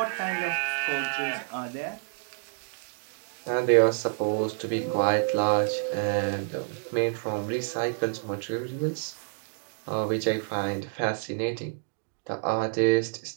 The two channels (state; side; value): silent; left; digital silence